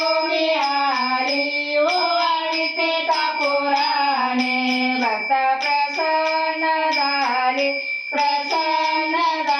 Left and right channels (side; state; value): both; identical; correlation 1.00